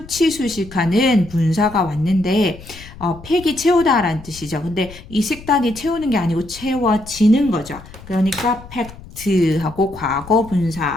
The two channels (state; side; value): noise; left; rumble, 18 dB below the sound